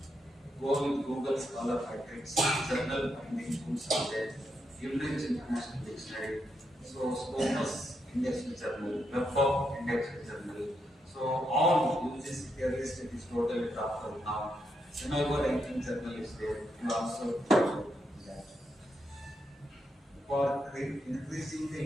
Go with Google Scholar Matrix, journal finding tools are there, Cambridge International Dictionary, so Scopus Indexed Journal, WebOp Indexed Journal. So all uses here list it is totally dropped out now. Semigo ranking journal is there. You also that. For increasing the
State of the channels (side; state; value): both; normal; correlation 0.81